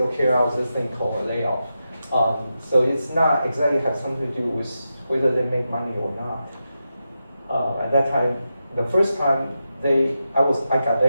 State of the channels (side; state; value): both; inverted; correlation -0.89